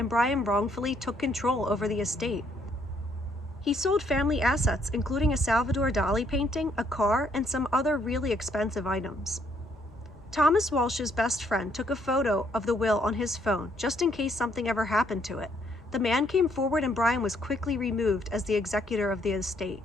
Brian wrongfully took control over the estate. He sold family assets, including a Salvador Dali painting, a car, and some other really expensive items. Thomas Walsh's best friend took a photo of the will on his phone, just in case something ever happened to it. The man came forward and Brian was quickly removed as the executor of the estate.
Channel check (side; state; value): both; normal; correlation 0.69